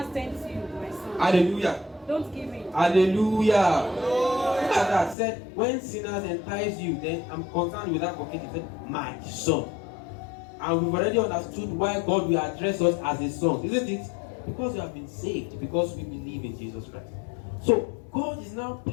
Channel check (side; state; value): right; drops out; at 5.2 s